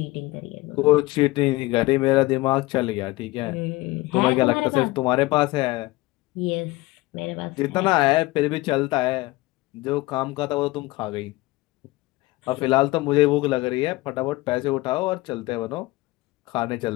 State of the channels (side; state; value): right; quieter; 20.2 dB